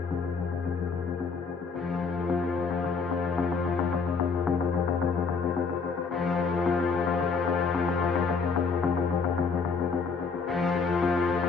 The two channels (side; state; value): right; quieter; 5.0 dB